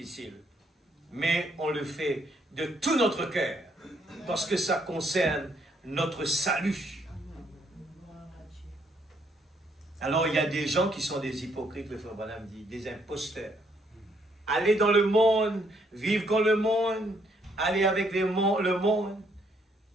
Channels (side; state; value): both; normal; correlation 0.70